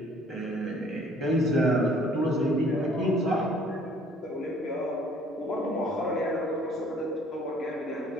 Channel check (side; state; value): both; normal; correlation 0.57